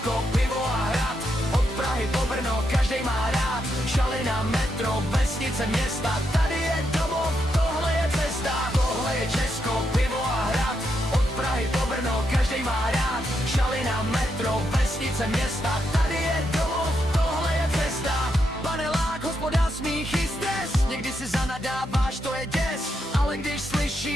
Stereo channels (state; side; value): normal; both; correlation 0.81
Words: pivo a hrad, od Prahy po Brno, každej má rád. Šalina, metro, vesnice, města, tady je domov, tohle je cesta. Tohle je Česko, pivo a hrad, od Prahy po Brno, každej má rád. Šalina, metro, vesnice, města, tady je domov, tohle je cesta. Panelák, hospoda, smích i stres, někdy si zanadáváš, to je děs. Ale když